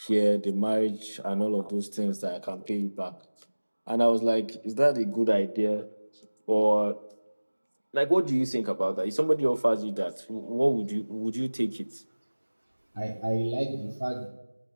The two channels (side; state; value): both; inverted; correlation -1.00